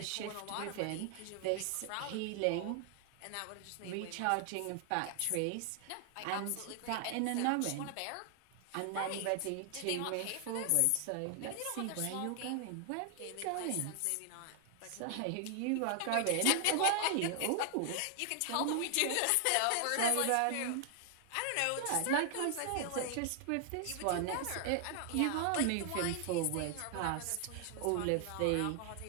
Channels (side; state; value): both; different; correlation 0.00